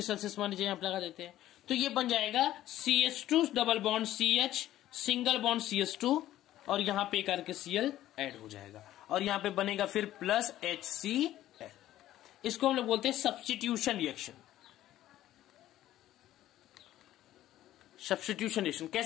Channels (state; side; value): quieter; right; 13.6 dB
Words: Celsius मान लीजिए, यहां पर लगा देते हैं, तो ये बन जाएगा CH2 double bond CH single bond CH2 और यहां पे करके Cl ऐड हो जाएगा और यहां पे बनेगा फिर प्लस HCl। इसको हम लोग बोलते हैं सब्स्टिट्यूशन रिएक्शन। सब्स्टिट्यूशन रिएक्शन